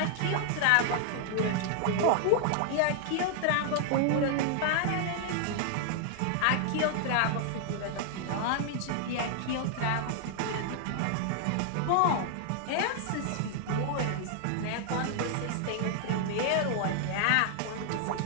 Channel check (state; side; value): different; both; correlation 0.00